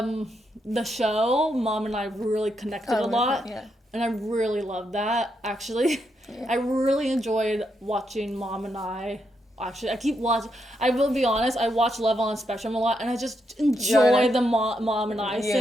show, Mom and I really connected a lot. Yeah. And I really love that, actually. Yeah. I really enjoyed watching Mom and I. Actually, I keep watching. I will be honest. I watch Love on the Spectrum a lot, and I just enjoy the mom and I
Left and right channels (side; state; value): both; normal; correlation 0.81